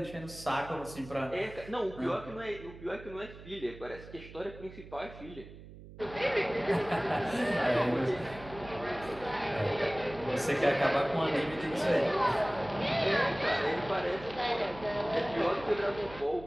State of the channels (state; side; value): noise; right; hum, 16 dB below the sound